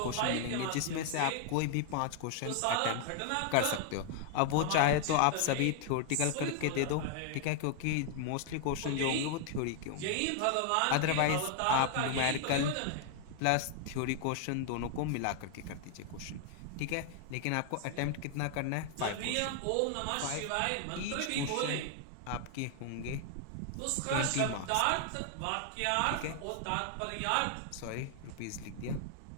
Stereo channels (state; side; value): different; both; correlation 0.00